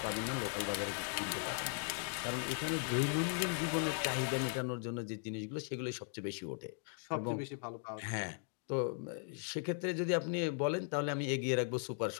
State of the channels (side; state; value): right; silent; 52 dB below the other